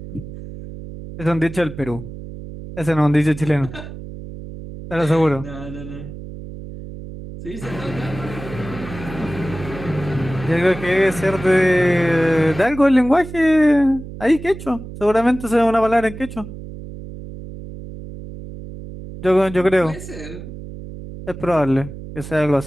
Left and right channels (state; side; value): noise; right; hum, 12 dB below the sound